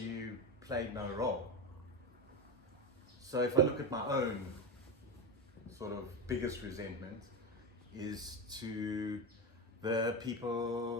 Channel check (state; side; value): normal; both; correlation 0.17